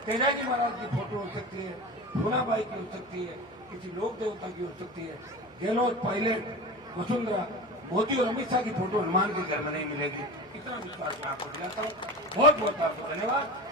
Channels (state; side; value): noise; right; hum, 28 dB below the sound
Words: तेजाजी महाराज की फोटो हो सकती है, भूनाबाई की हो सकती है, किसी लोक देवता की हो सकती है, गहलोत, पायलट, वसुंधरा, मोदी और अमित शाह की फोटो हनुमान के घर में नहीं मिलेगी। इतना विश्वास मैं आपको दिलाता हूँ। बहुत बहुत आपको धन्यवाद।